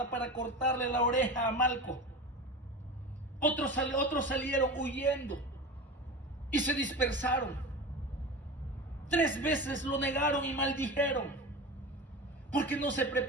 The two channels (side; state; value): both; normal; correlation 0.29